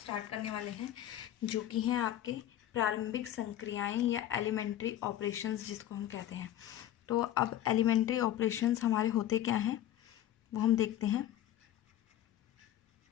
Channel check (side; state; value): right; quieter; 12.3 dB